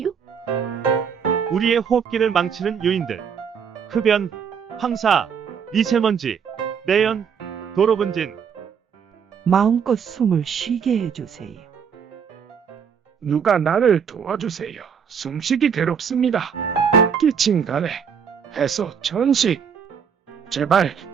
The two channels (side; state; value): left; quieter; 7.0 dB